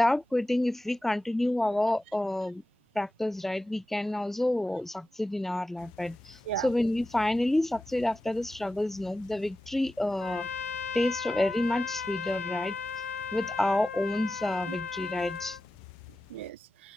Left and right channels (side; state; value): both; normal; correlation 0.93